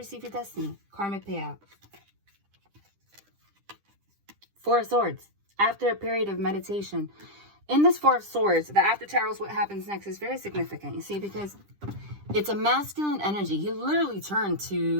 your destiny. Karmic payout. Four of Swords. After a period of meditation. In this Four of Swords, the After Tarot is what happens next is very significant. You see, because it's a masculine energy. He literally turned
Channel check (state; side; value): late; left; 10 ms